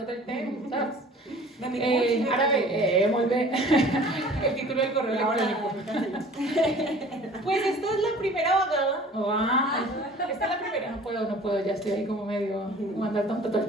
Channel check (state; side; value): normal; both; correlation 0.47